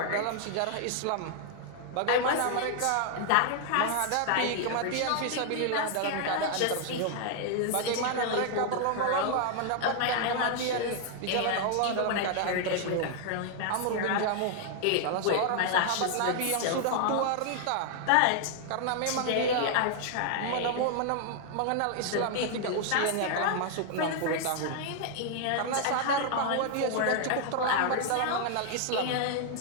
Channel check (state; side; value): different; both; correlation 0.00